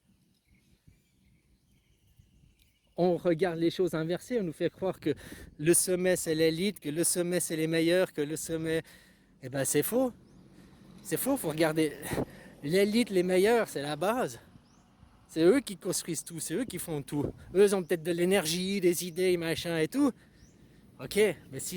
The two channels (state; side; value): identical; both; correlation 1.00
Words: On regarde les choses inversées, on nous fait croire que le sommet, c'est l'élite, que le sommet, c'est les meilleurs, que le sommet... Eh ben, c'est faux. C'est faux, faut regarder. L'élite, les meilleurs, c'est la base. C'est eux qui construisent tout, c'est eux qui font tout. Eux, ils ont peut-être de l'énergie, des idées, machin et tout. Ok, mais